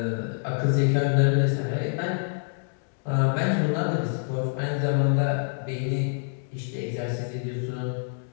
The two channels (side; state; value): right; silent; digital silence